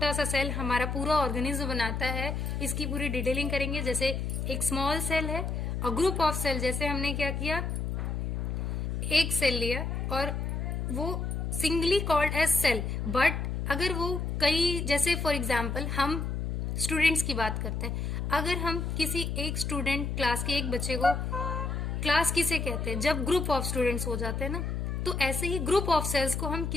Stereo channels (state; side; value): noise; left; hum, 2 dB below the sound